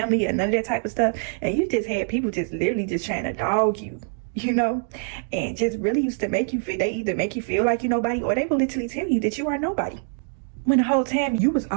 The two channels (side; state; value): left; silent; digital silence